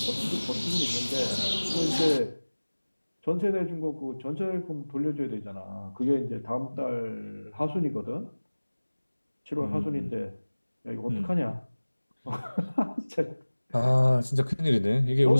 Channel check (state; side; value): inverted; both; correlation -1.00